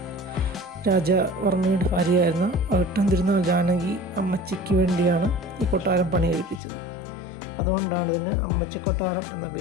രാജവർമ്മയുടെ ഭാര്യയായിരുന്ന അവിട്ടം തിരുനാൾ ജാനകി അമ്മച്ചിക്ക് വേണ്ടിയാണ് ഈ കൊട്ടാരം പണി കഴിപ്പിച്ചത്. അതുകൊണ്ടാണ് ഇതിന് അമ്മച്ചി കൊട്ടാരം എന്ന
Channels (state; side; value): drops out; right; at 6.6 s